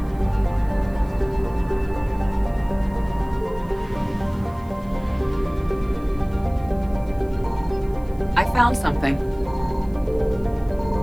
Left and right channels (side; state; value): right; noise; hiss, 29 dB below the sound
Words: I found something.